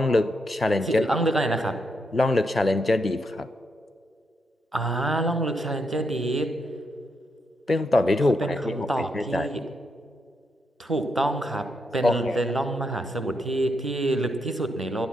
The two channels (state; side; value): normal; both; correlation 0.80